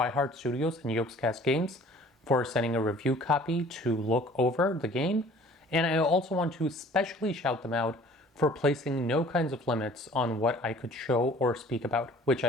Studios and Yogscast Games for sending a review copy to look over the game, and I also want to especially shout them out for placing no kinds of limits on what I could show or speak about, which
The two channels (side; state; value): both; normal; correlation 0.51